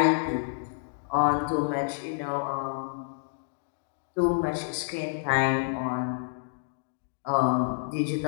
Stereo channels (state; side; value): silent; right; digital silence